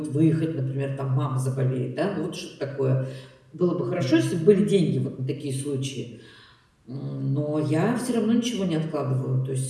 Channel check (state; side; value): identical; both; correlation 1.00